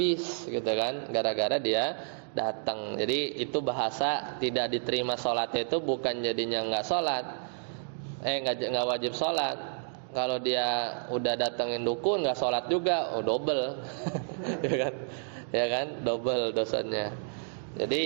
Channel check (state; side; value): silent; left; digital silence